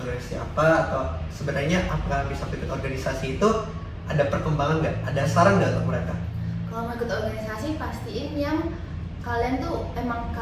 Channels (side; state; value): both; identical; correlation 1.00